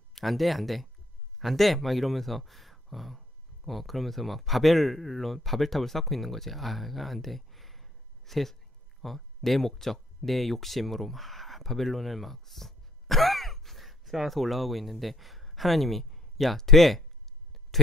안 돼. 막 이러면서 그러면서 막 바벨탑을 쌓고 있는 거지. 안 돼. 내 목적, 내 욕심으로 막 바벨론을 막 쌓아서 올라가고 있는데 하나님이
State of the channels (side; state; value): both; normal; correlation 0.64